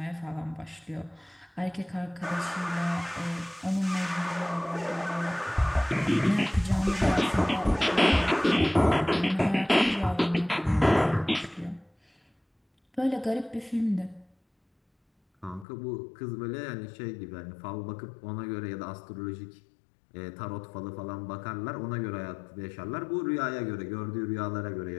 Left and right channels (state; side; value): drops out; right; at 15.7 s